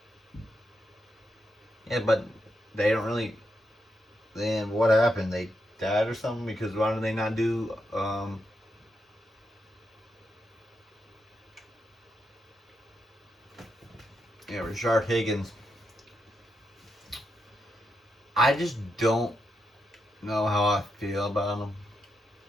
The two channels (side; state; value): both; normal; correlation 0.83